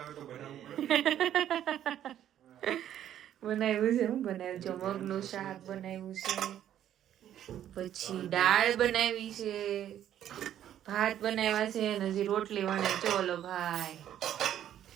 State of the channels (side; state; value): left; quieter; 11.0 dB